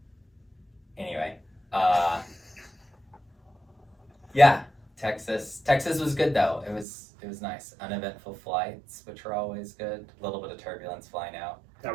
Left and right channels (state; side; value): drops out; left; at 6.9 s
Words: Anyway, yeah, Texas was good though. It was nice. Uneventful flights, which are always good. A little bit of turbulence flying out. That